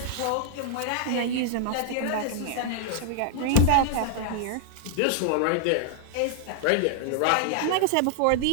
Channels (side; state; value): both; different; correlation -0.01